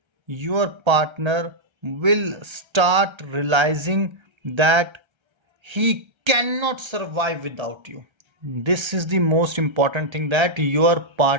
your partner will start realizing that he cannot survive without you. This is the most important thing, that your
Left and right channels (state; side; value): late; left; 1.3 ms